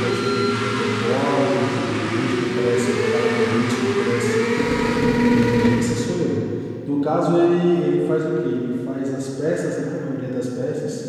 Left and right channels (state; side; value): identical; both; correlation 1.00